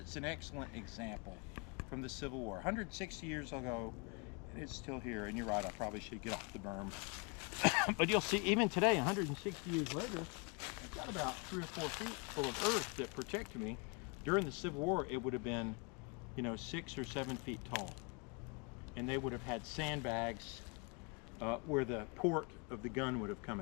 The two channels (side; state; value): right; quieter; 31.8 dB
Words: an excellent example from the Civil War. 160 years ago, and it's still here. And you're right, I probably should get off the berm. But you'll see, even today, 160 years later, I've got about 3 or 4 feet full of earth that protect me. During the Civil War, it would have been, 6 or 7 feet tall. And they would have had sandbags where the port of the gun would have come